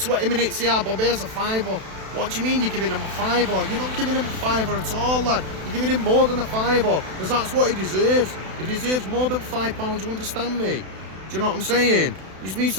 minutes, yeah, Bob, here's a fiver. What do you mean you're giving him a fiver? You're not giving him a fiver at all, lad. You're giving him more than a fiver, because that's what he deserves. He deserves more than £5, you understand me? Do you know what I'm saying? You just need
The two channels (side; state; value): left; late; 32 ms